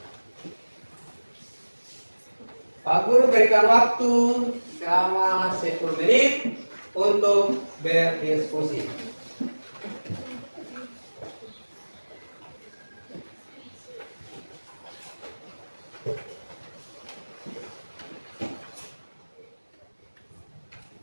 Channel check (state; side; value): inverted; both; correlation -1.00